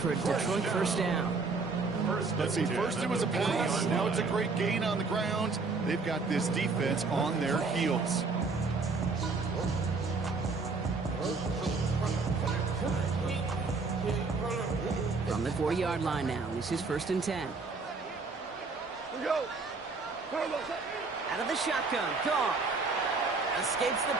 a Detroit first down. Let's see, first it was a pass, now it's a great gain on the ground. They've got this defense on their heels. From the 40-yard line now, this is first and 10. Out of the shotgun, Goff escapes the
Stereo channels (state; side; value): quieter; left; 4.1 dB